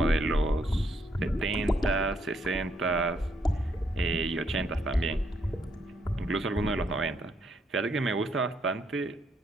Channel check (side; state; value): both; normal; correlation 0.74